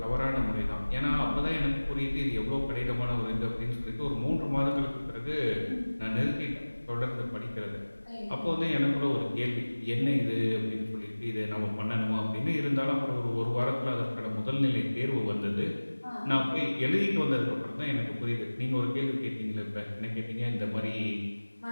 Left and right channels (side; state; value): both; inverted; correlation -1.00